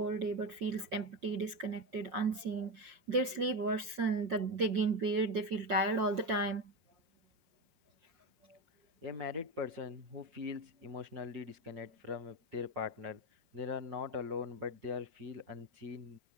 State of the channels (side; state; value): left; late; 5.7 ms